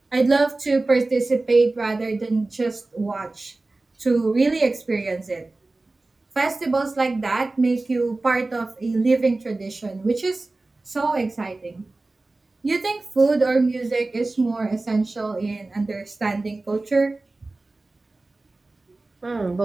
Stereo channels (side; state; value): left; quieter; 3.2 dB